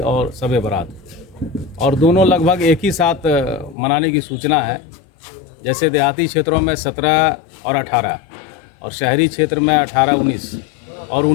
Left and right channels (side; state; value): right; drops out; at 3.8 s